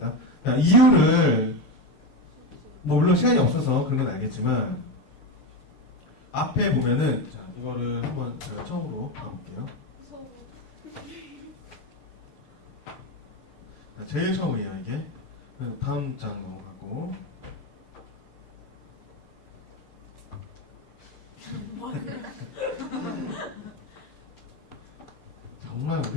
이유를 뭐 물론 시간이 없어서 그런 건 알겠지만 앞에 보면은 자, 이거를 한번 제가 처음으로 가볼게요. 무서워. 제일 처음이에요 이게. 다음 장 넘어가고. 정말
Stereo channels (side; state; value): right; late; 6.7 ms